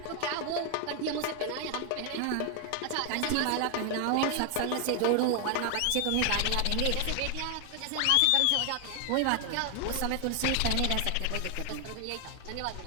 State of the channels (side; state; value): both; different; correlation 0.00